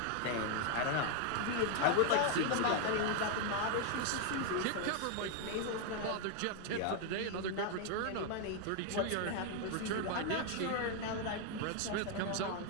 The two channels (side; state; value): both; different; correlation 0.00